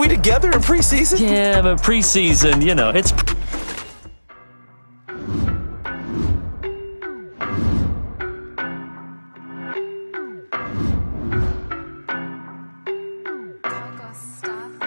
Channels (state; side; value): inverted; both; correlation -1.00